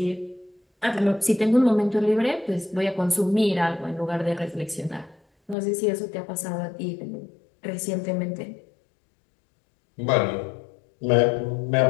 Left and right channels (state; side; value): drops out; right; at 5.6 s